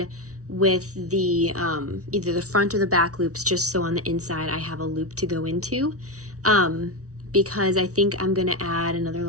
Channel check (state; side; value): late; left; 0.66 ms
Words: with the either the front or the back loops, just so on the inside I have a loop to go into, because I think I'm going to add another